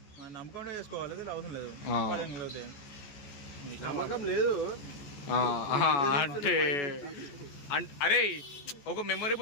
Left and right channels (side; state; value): right; late; 14 ms